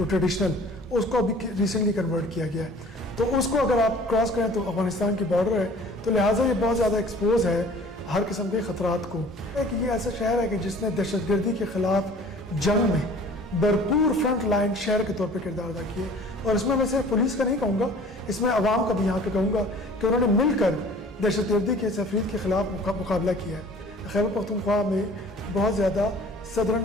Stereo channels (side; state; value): both; normal; correlation 0.48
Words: ٹریڈیشنل، اس کو ابھی ریسنٹلی کنورٹ کیا گیا ہے. تو اس کو اگر آپ کراس کریں تو افغانستان کی بارڈر ہے، تو لہٰذا یہ بہت زیادہ ایکسپوز ہے ہر قسم کے خطرات کو. کہ یہ ایسا شہر ہے کہ جس نے دہشت گردی کے خلاف جنگ میں بھرپور فرنٹ لائن شہر کے طور پہ کردار ادا کیے. اور اس میں صرف پولیس کا نہیں کہوں گا، اس میں عوام کا بھی یہاں پہ کہوں گا کہ انہوں نے مل کر دہشت گردی کے تفرید کے خلاف مقابلہ کیا ہے. خیبر پختونخوا میں بہت زیادہ صدرن